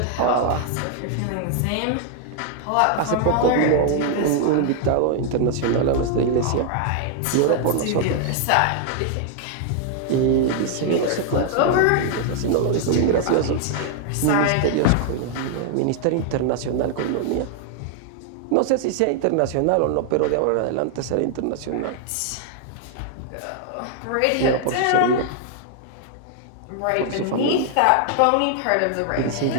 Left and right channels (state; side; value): different; both; correlation 0.00